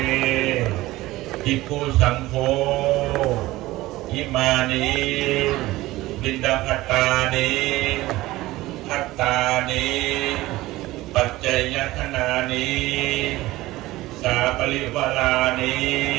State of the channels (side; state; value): left; quieter; 17.9 dB